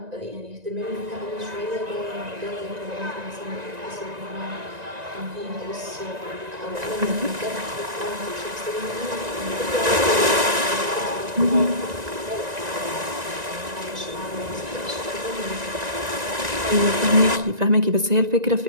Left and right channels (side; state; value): left; late; 1.9 ms